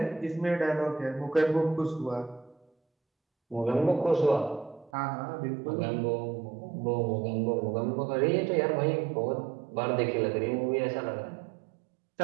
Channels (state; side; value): drops out; left; at 4.9 s